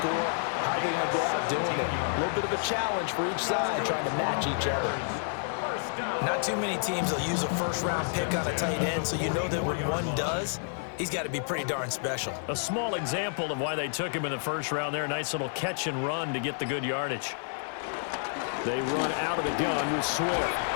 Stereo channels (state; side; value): silent; right; 58 dB below the other